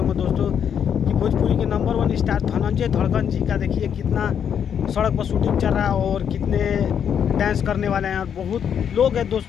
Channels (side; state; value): right; quieter; 8.2 dB